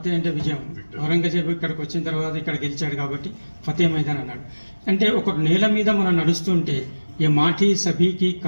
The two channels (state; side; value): inverted; both; correlation -1.00